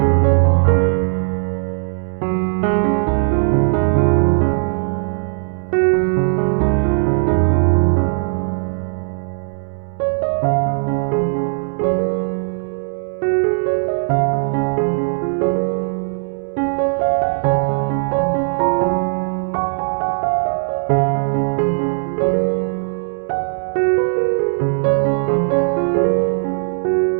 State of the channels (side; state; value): left; silent; digital silence